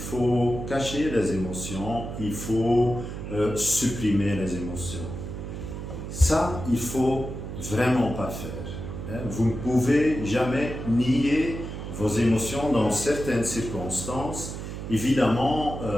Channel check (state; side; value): noise; right; hum, 7 dB below the sound